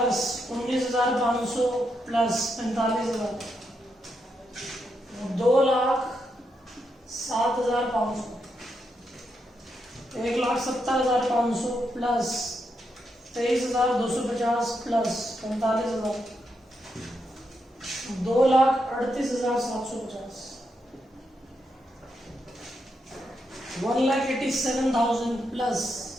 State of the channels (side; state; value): both; normal; correlation 0.82